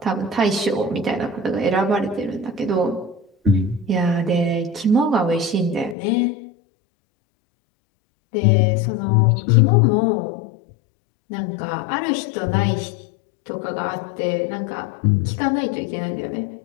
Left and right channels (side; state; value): right; drops out; at 6.0 s